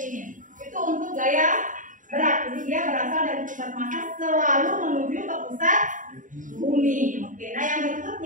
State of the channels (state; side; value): late; left; 0.38 ms